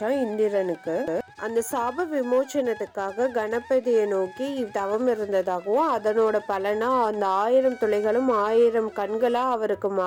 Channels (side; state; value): both; identical; correlation 1.00